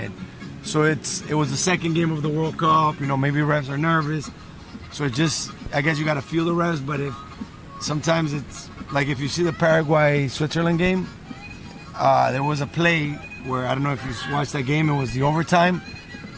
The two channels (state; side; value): identical; both; correlation 1.00